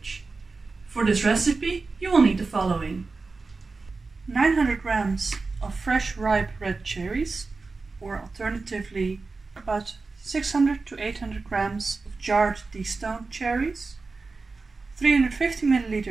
For this recipe you will need the following: 900 grams of fresh ripe red cherries, or alternatively about 600 to 800 grams of jarred destoned cherries, 350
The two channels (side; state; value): left; quieter; 4.0 dB